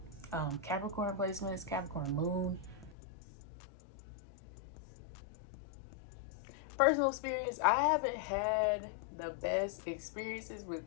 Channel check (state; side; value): drops out; right; at 3.0 s